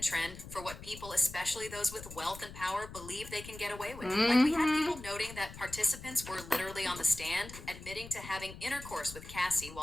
trend for what people, especially those with wealth and power, believe they can get away with. Like, we had people noting that participants were literally on the stand, admitting to having intercourse with Cassie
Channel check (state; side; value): noise; left; rumble, 14 dB below the sound